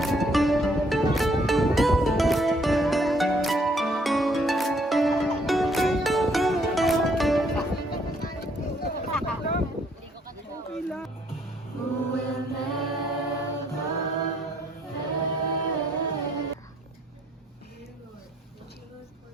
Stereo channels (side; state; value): both; normal; correlation 0.67